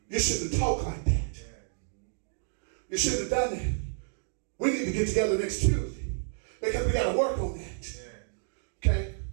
You shouldn't have talked like that. You should have done that. We need to get together next Tuesday because we got to work on that. Okay?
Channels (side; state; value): left; silent; digital silence